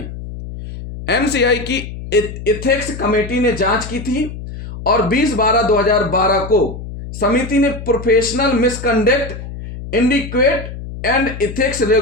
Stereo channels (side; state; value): left; noise; hum, 10 dB below the sound